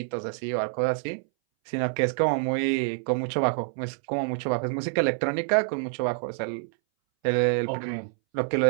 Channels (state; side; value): silent; left; 60 dB below the other